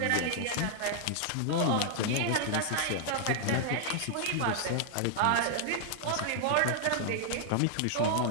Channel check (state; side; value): different; both; correlation 0.00